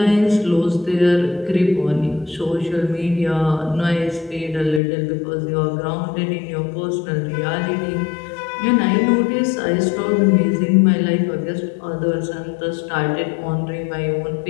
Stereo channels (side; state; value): right; drops out; at 4.8 s